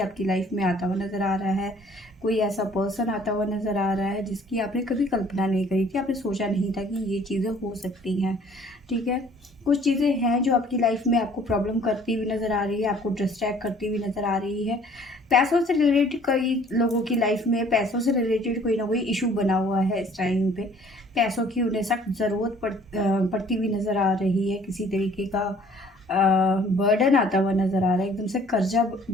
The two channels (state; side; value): normal; both; correlation 0.56